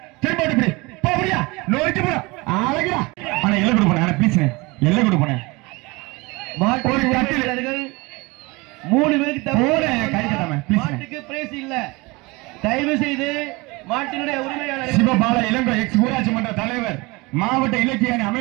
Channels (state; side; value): quieter; left; 24.5 dB